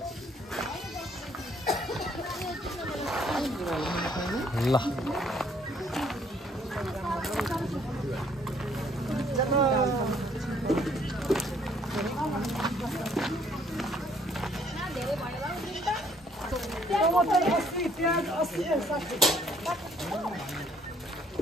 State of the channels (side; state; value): both; normal; correlation 0.64